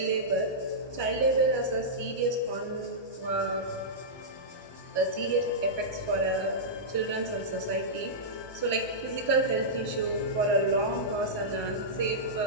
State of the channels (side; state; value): right; late; 1.2 ms